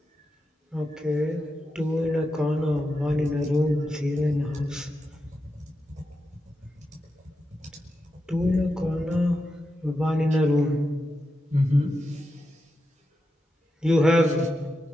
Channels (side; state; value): both; normal; correlation 0.88